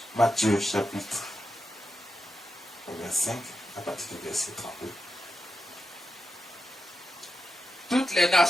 Matthieu chapitre 25, à partir du verset 32. Toutes les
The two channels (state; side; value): normal; both; correlation 0.89